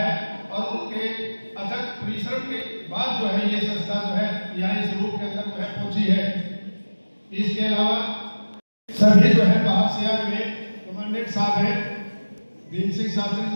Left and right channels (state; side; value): inverted; both; correlation -1.00